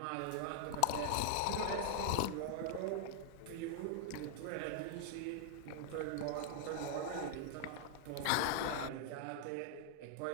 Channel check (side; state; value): both; different; correlation -0.01